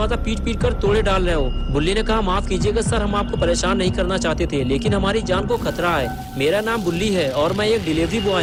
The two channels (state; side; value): identical; both; correlation 1.00